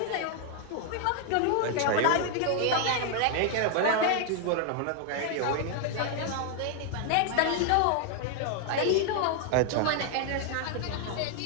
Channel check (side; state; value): both; different; correlation 0.00